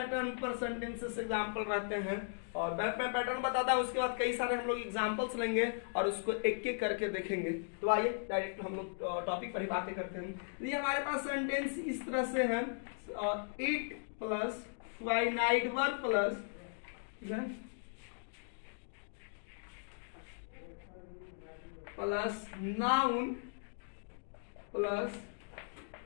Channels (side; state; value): right; silent; digital silence